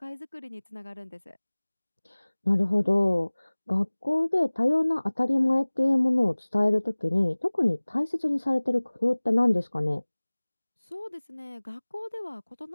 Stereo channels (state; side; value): inverted; both; correlation -1.00